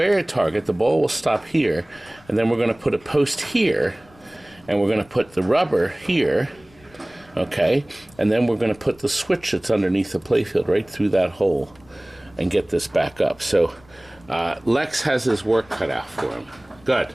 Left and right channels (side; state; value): left; noise; rumble, 27 dB below the sound